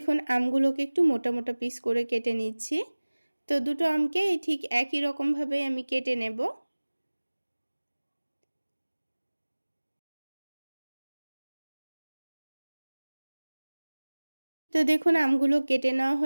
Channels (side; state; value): both; inverted; correlation -1.00